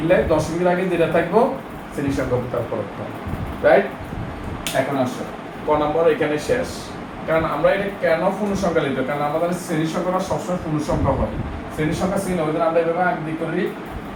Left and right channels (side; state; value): both; identical; correlation 1.00